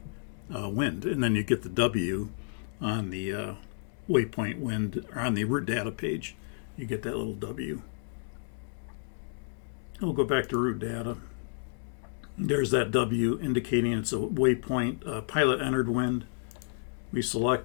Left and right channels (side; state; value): right; silent; digital silence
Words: wind, and then you get the W on the waypoint wind, or on the route data page. You get that little W. We'll go back to route data. There's that W indicating it's a waypoint pilot entered wind. We